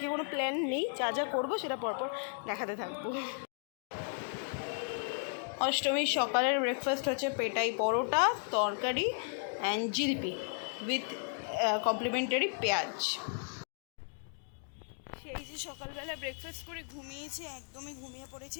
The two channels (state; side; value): silent; right; 55 dB below the other